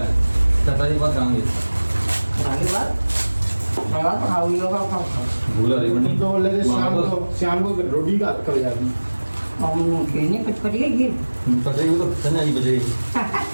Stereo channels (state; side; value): inverted; both; correlation -1.00